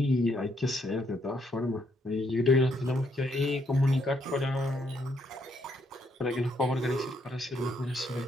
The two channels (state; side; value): normal; both; correlation 0.73